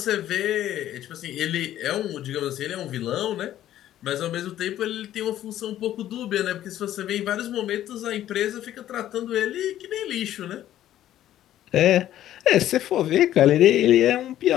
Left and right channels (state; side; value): quieter; right; 12.5 dB